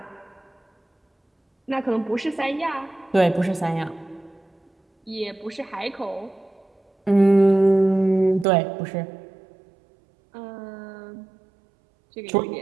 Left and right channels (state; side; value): drops out; left; at 8.5 s